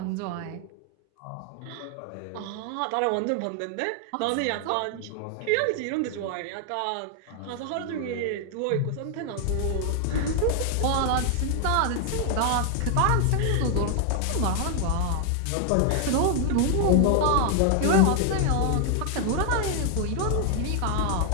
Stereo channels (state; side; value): different; both; correlation 0.00